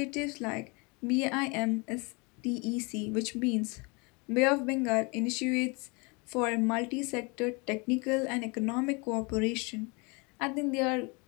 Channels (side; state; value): right; quieter; 29.7 dB